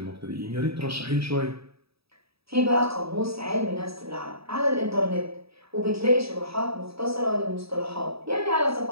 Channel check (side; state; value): left; late; 0.77 ms